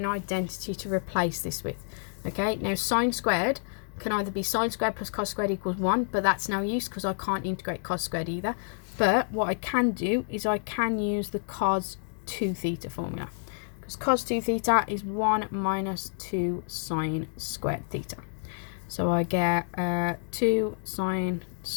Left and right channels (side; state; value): right; silent; digital silence